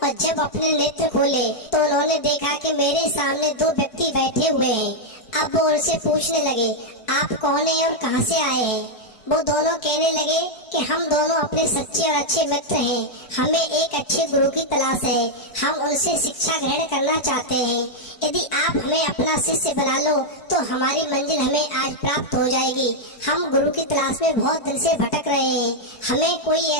और जब अपने नेत्र खोले तो उन्होंने देखा कि मेरे सामने दो व्यक्ति बैठे हुए हैं। अब वो उनसे पूछने लगे, आप कौन हैं और कहां से आए हैं। वो दोनों कहने लगे कि हम दोनों अपने सच्चे और अच्छे मित्र हैं, हमें एक अच्छे गुरु की तलाश है, हम उनसे शिक्षा ग्रहण करना चाहते हैं। यदि आप हमें अपना शिष्य बना लो तो हमारी मंजिल हमें आज प्राप्त हो जाएगी। हम गुरु की तलाश में बहुत दिन से भटक रहे हैं, हमें कोई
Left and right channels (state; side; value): late; right; 4.6 ms